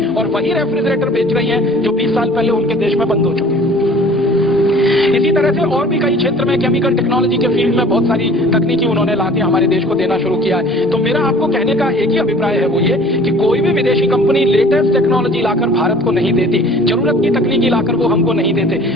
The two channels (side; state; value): both; normal; correlation 0.48